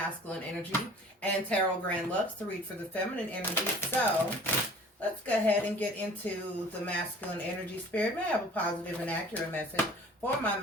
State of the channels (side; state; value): both; normal; correlation 0.48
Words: energy and Tarot Grand Lux to read for the feminine energy. So let's go ahead and get into the masculine energy. Spirit, may I have a positive and accurate message for my